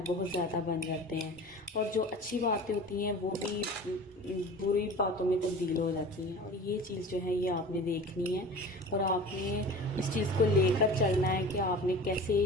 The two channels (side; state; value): both; normal; correlation 0.38